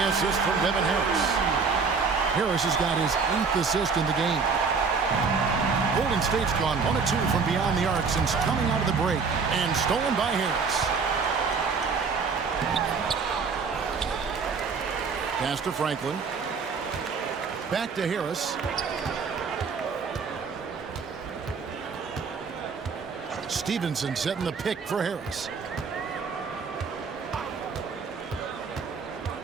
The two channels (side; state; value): left; quieter; 5.2 dB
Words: assist from Devin Harris. Harris has got his 8th assist in the game. Golden State's gone 1 of 2 from beyond the arc since coming out of the break. And stolen by Harris. Pass to Franklin. Back to Harris. Stevenson setting the pick for Harris.